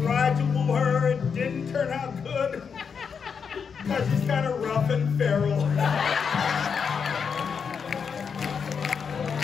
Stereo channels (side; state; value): right; quieter; 6.3 dB